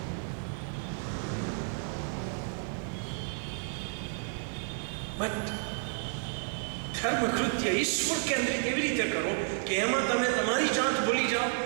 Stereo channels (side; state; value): left; silent; 57 dB below the other